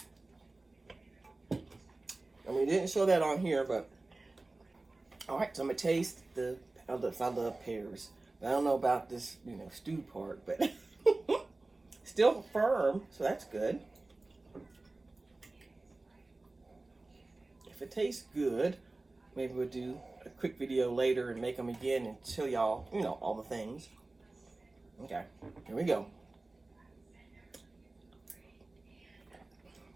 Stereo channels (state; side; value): quieter; left; 3.1 dB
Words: I mean, didn't show that on here, but all right. So I'm gonna taste I love pears. I don't know about this, stew part, but still firm, so that's good. If it tastes good, maybe we'll do a quick video later and make them again and show y'all, all the things. Okay, here we go.